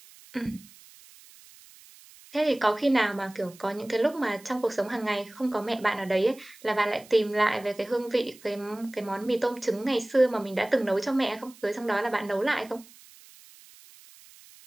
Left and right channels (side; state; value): right; noise; hiss, 23 dB below the sound